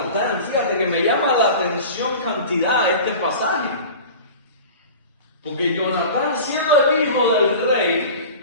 fíjate que me llama la atención cantidad de este pasaje. Porque Jonatán, siendo el hijo del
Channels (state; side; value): inverted; both; correlation -0.37